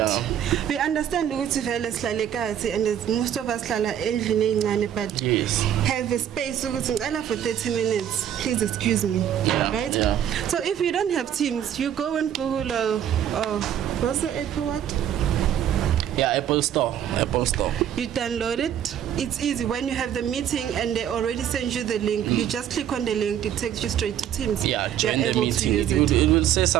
We understand and most of us but have a space for 30 minutes. Please excuse me. Right? So if you don't have Teams, you go and Google what's the Apple what? Apple Store. You download it. It's easy. When you have the meeting and they already send you the link, you just click on the link. It takes you straight to Teams. Join the meeting. It will say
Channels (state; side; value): quieter; left; 10.0 dB